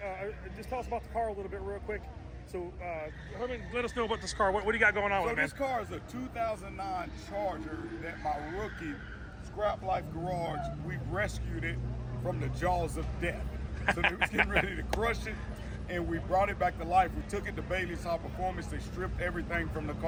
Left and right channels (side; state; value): both; identical; correlation 1.00